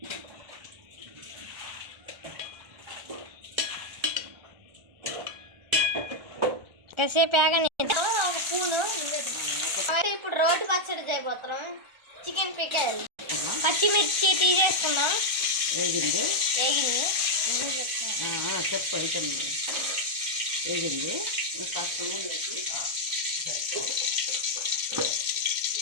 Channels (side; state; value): left; late; 1.4 ms